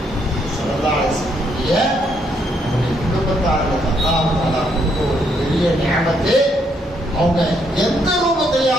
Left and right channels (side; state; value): both; normal; correlation 0.73